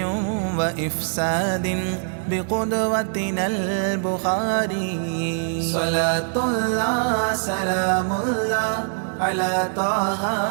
وإفساد بقدوتنا البخاري صلاة الله سلام الله على طه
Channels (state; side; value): silent; left; digital silence